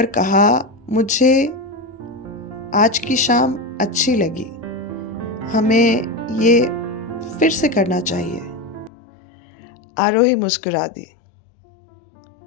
कहा, मुझे आज की शाम अच्छी लगी, हमें ये फिर से करना चाहिए। आरोही मुस्कुरा दी,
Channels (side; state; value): right; drops out; at 8.9 s